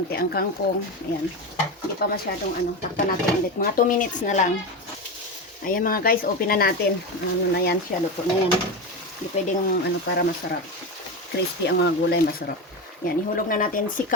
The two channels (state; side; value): normal; both; correlation 0.19